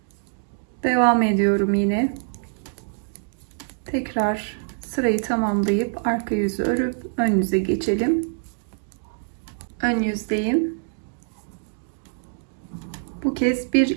Devam ediyorum yine. Tekrar sırayı tamamlayıp arka yüzü örüp ön yüze geçelim. Ön yüzdeyim. Bu kez bir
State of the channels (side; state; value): left; silent; digital silence